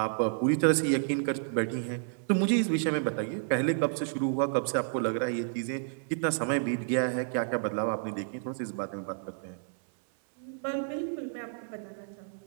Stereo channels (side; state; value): left; silent; 57 dB below the other